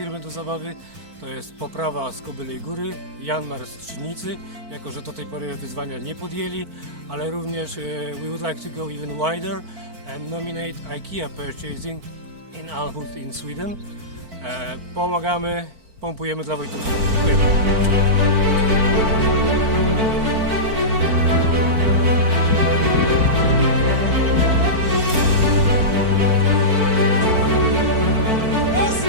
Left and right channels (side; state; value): left; late; 4.5 ms